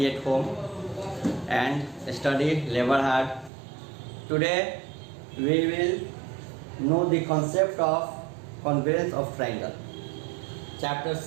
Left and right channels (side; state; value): left; drops out; at 3.5 s